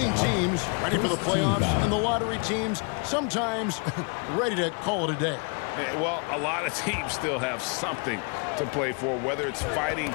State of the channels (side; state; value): right; quieter; 36.0 dB